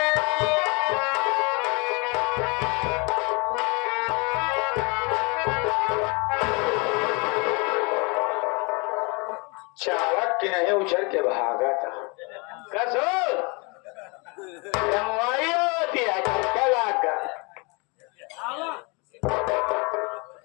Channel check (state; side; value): quieter; right; 30.1 dB